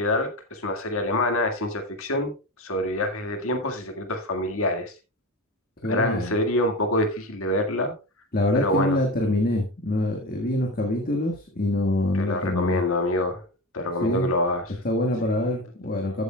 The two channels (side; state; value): both; normal; correlation 0.24